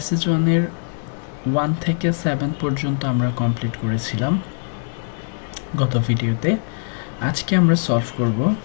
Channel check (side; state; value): right; silent; 65 dB below the other